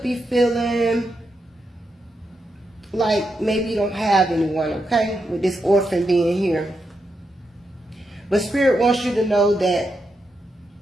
be feeling like maybe you don't have anyone, okay, with this orphan being here. But Spirit wants you to know that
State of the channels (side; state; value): both; normal; correlation 0.84